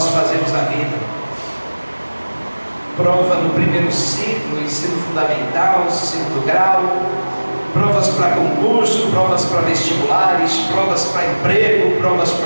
fazemos na vida? Prova no primeiro ciclo, ensino fundamental, segundo grau, provas para concurso, provas para vestibulares, provas para emprego, provas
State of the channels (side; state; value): both; inverted; correlation -1.00